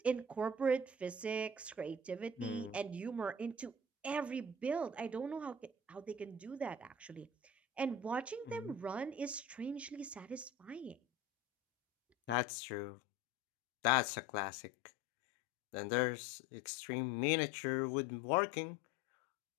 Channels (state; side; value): drops out; right; at 12.4 s